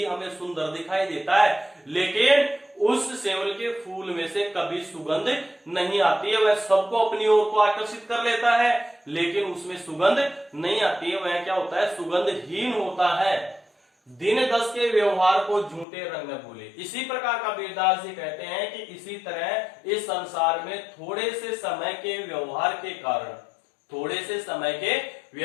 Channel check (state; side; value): drops out; right; at 15.9 s